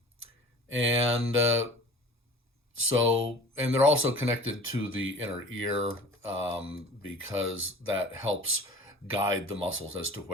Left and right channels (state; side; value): normal; both; correlation 0.42